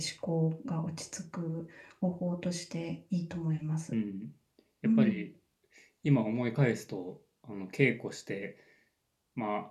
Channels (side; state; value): both; identical; correlation 1.00